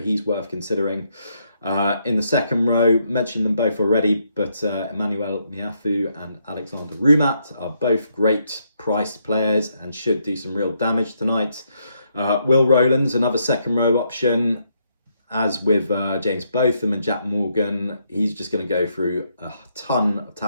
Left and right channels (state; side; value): inverted; both; correlation -0.76